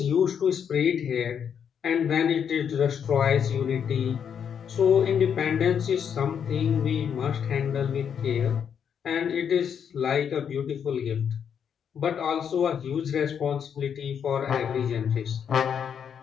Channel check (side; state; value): right; quieter; 7.8 dB